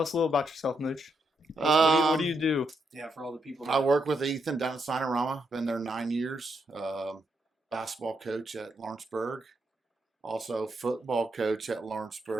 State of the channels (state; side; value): normal; both; correlation 0.80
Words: us a little about yourself, Mooch. What do you do? it. Yeah, for all the people. I work with Ethan down at Sinorama. Been there 9 years. Basketball coach at Lawrenceburg. Also football coach at